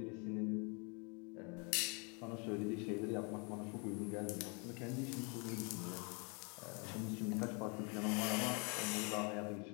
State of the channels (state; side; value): quieter; right; 34.0 dB